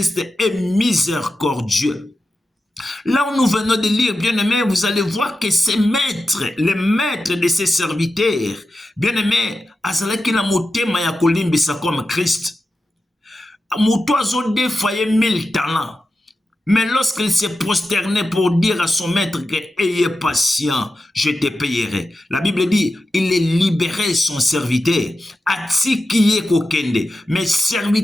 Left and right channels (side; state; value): both; normal; correlation 0.91